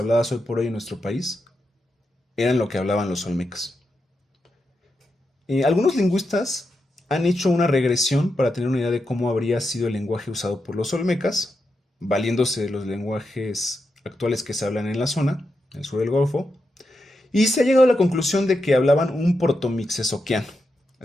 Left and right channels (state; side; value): normal; both; correlation 0.86